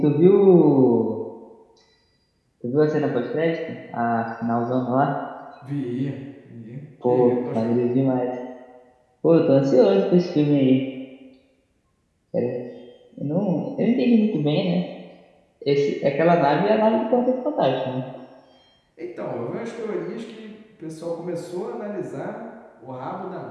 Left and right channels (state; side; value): identical; both; correlation 1.00